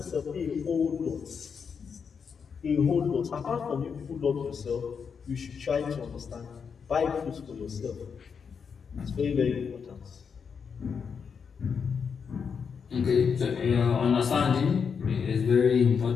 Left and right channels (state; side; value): quieter; right; 6.3 dB